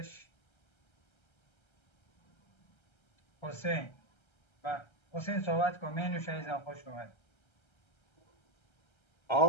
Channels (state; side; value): late; right; 1.3 ms